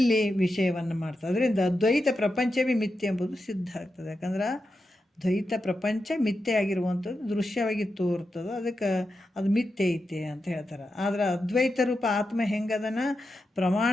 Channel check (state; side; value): normal; both; correlation 0.88